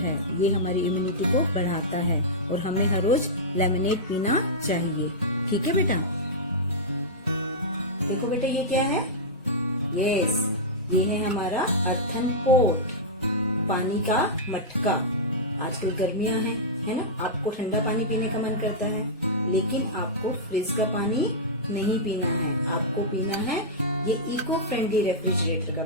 ये हमारी इम्यूनिटी को बढ़ाता है और हमें हर रोज लेमनेड पीना चाहिए। ठीक है बेटा? देखो बेटा ये क्या है? यस, ये है हमारा अर्थन पॉट, पानी का मटका। आजकल गर्मियां हैं, है ना? आपको ठंडा पानी पीने का मन करता है, लेकिन आपको फ्रिज का पानी नहीं पीना है। आपको पीना है ये इको फ्रेंडली रेफ्रिजरेटर का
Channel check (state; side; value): normal; both; correlation -0.11